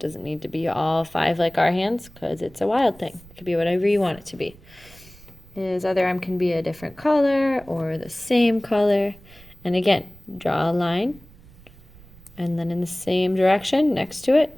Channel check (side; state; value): right; noise; rumble, 23 dB below the sound